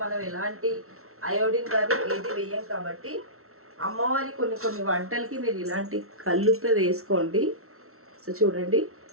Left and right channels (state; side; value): late; left; 0.63 ms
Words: మనం ఎలాంటి అయోడిన్ కానీ ఏది వేయం కాబట్టి అమ్మవారి కొన్ని వంటలకి మీరు ఇలాంటి కల్లుప్పే వేసుకోండి. సో చూడండి